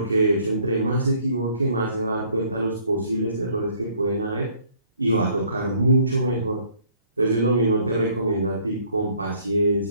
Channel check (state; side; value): inverted; both; correlation -0.61